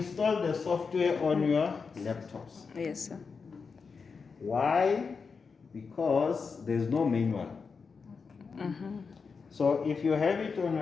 the software on your laptops. Yes, sir. Why? Because there's no manual. So if you have it on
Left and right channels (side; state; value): right; quieter; 5.2 dB